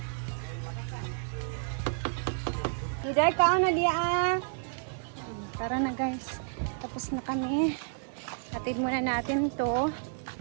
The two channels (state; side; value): silent; left; digital silence